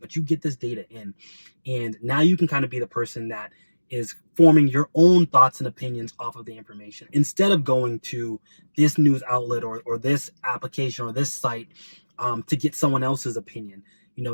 but you get this data in. And now you can kind of be the person that is forming your own thoughts and opinions off of the information instead of going to this news outlet or this application or this site to get someone else's opinion.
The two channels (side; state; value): both; inverted; correlation -1.00